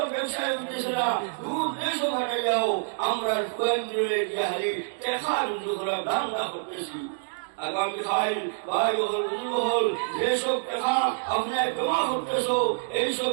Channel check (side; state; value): left; silent; digital silence